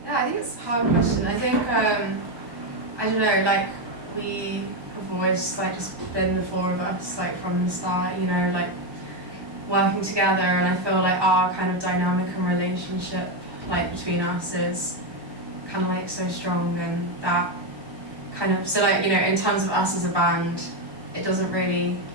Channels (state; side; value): late; left; 1.1 ms